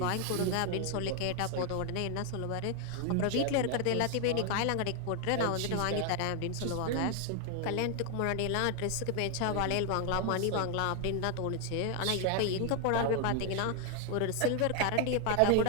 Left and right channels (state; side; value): different; both; correlation 0.00